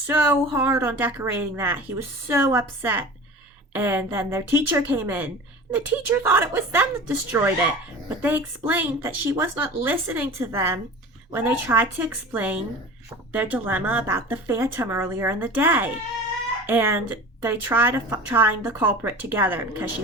hard on decorating that. He was so upset. And then their teacher came in, and the teacher thought it was them that destroyed it. But they explained that she was not listening to them when they tried to explain their dilemma about the phantom earlier in the day. And they try to find the culprit together because she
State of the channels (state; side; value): normal; both; correlation 0.36